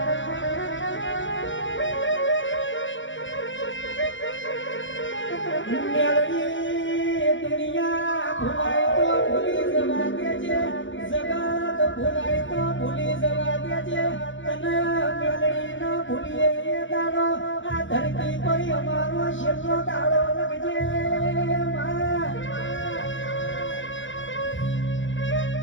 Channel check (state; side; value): late; right; 0.56 ms